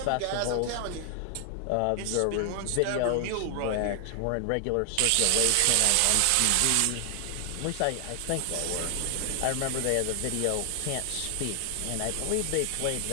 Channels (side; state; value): both; different; correlation 0.00